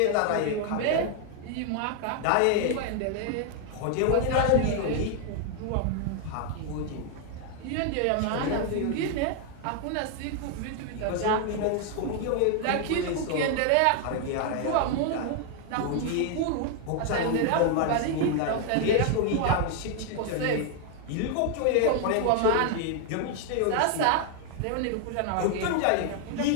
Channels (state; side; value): different; both; correlation 0.00